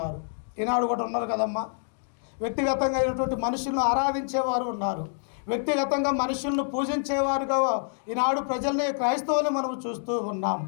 ఈనాడు కూడా ఉన్నారు కదమ్మా, వ్యక్తిగతంగా అయినటువంటి మనుషులను ఆరాధించేవారు ఉన్నారు, వ్యక్తిగతంగా మనుషులను పూజించేవారుగా ఈనాడు ప్రజల్ని, క్రైస్తవుల్ని మనము చూస్తూ ఉన్నాం.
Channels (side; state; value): right; silent; digital silence